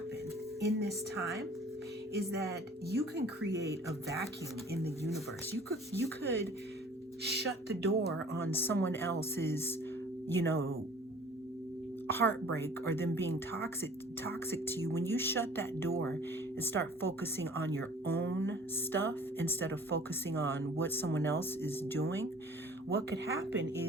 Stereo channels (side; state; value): both; normal; correlation 0.49